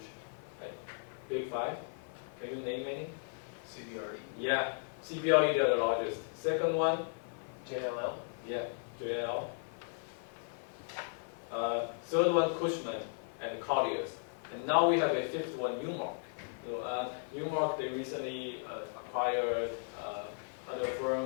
Like big five? Can you name any? CBRE. Yeah, CBRE, they're the largest. Second one? JLL. Yeah, JLL. Third one, Cushman and Colliers. And now we have a fifth one, Newmark. So Newmark, they recently acquired other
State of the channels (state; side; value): silent; right; 54 dB below the other